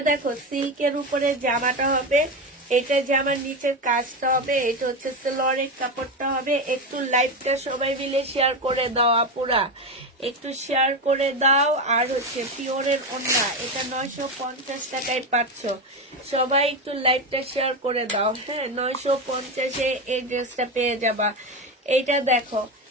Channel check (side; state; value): both; normal; correlation 0.16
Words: দেখো, সিল্কের উপরে জামাটা হবে। এটা জামার নিচের কাজটা হবে। এটা হচ্ছে সালোয়ারের কাপড়টা হবে। একটু লাইভটা সবাই মিলে শেয়ার করে দাও আপুরা, একটু শেয়ার করে দাও। আর হচ্ছে পিওরের ওড়না, এটা 950 টাকায় পাচ্ছ। সবাই একটু লাইভটা শেয়ার করে দাও। হ্যাঁ, 950-এ এই ড্রেসটা পেয়ে যাবা। এইটা দেখো,